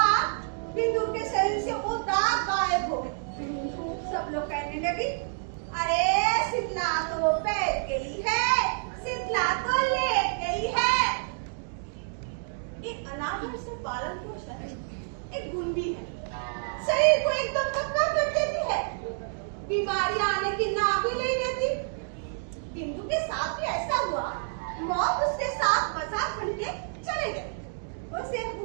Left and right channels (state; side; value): silent; left; digital silence